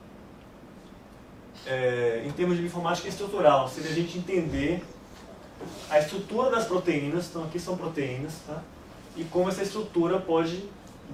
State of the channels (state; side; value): identical; both; correlation 1.00